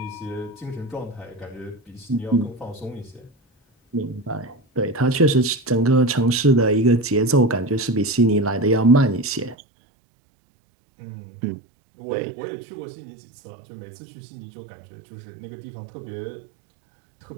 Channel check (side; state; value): left; drops out; at 9.6 s